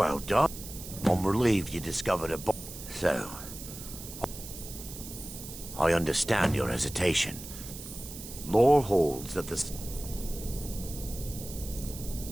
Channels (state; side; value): noise; right; hiss, 12 dB below the sound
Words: done. I'm relieved you discovered a So... I understand your hesitation. Lore holds that the...